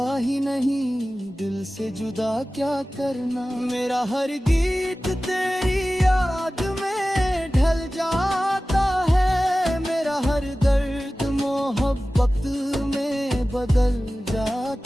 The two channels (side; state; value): both; normal; correlation 0.96